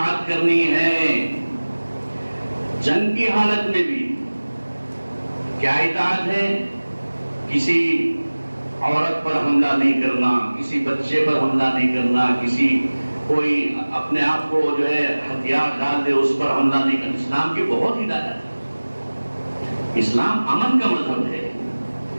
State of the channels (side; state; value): both; inverted; correlation -1.00